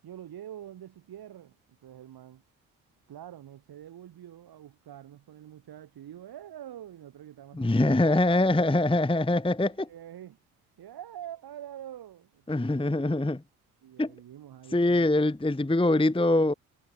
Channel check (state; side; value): normal; both; correlation 0.77